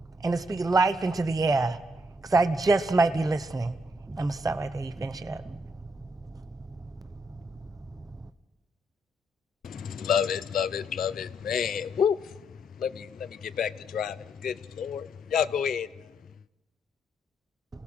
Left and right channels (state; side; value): normal; both; correlation 0.75